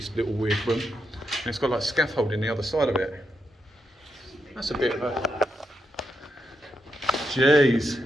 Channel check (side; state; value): both; normal; correlation 0.83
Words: little weird room. And it's got like scaffolding the other side of it. That's a bit of a Jeez.